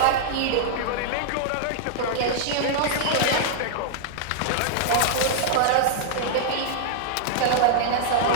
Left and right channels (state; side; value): different; both; correlation -0.01